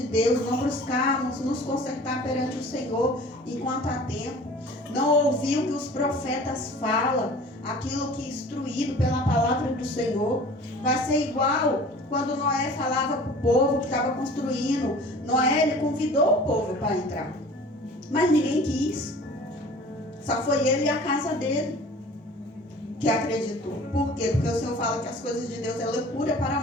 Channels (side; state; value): both; normal; correlation 0.45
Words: Deus, não buscarmos nos consertar perante o Senhor enquanto há tempo, não ouvir o que os profetas falam, aquilo que é instruído pela palavra do Senhor, vai ser igual quando Noé falava para o povo que estava construindo. Noé, ele convidou o povo para entrar, mas ninguém quis. Só foi ele e a casa dele que acreditou. Por quê? Porque o Senhor fala que as coisas de Deus é loucura para